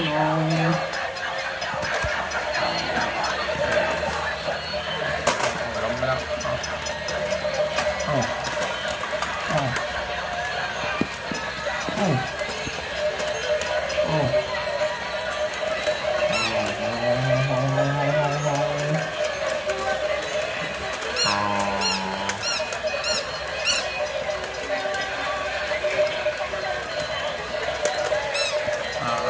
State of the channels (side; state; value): both; identical; correlation 1.00